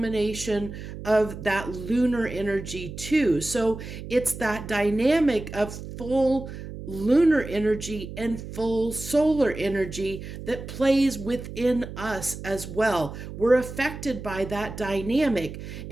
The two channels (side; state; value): right; noise; hum, 10 dB below the sound